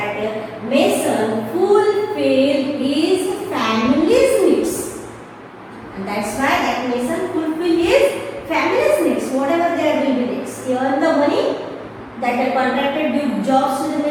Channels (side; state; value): both; identical; correlation 1.00